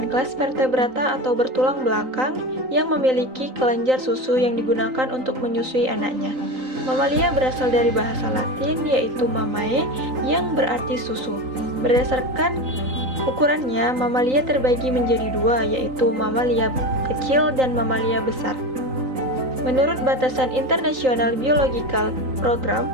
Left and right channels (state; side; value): late; left; 3.9 ms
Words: kelas vertebrata atau bertulang belakang yang memiliki kelenjar susu yang digunakan untuk menyusui anaknya. Mamalia berasal dari bahasa Latin yaitu mamae yang berarti susu. Berdasarkan ukurannya, mamalia terbagi menjadi dua, yaitu mamalia kecil dan mamalia besar. Menurut batasan International Biological Program,